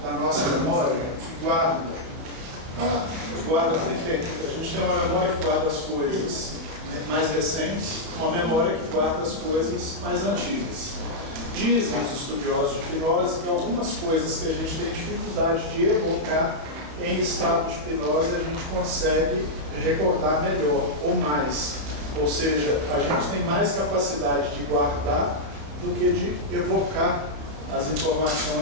da nossa memória, que guarda primeiro, a gente tem uma memória que guarda as coisas mais recentes, uma memória que guarda as coisas mais antigas. Dizem os estudiosos de hipnose que algumas coisas que a gente tem dificuldade de evocar em estado de hipnose a gente consegue recordar melhor ou mais. Ou seja, a gente tem mais capacidade de guardar do que de evocar as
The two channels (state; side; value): late; left; 32 ms